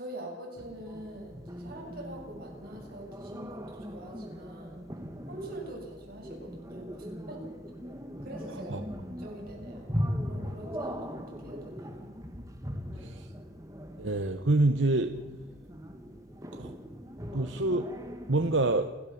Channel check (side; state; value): both; normal; correlation 0.52